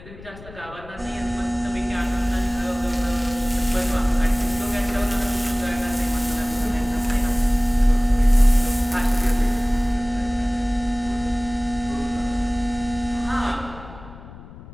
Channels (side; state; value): left; noise; rumble, 17 dB below the sound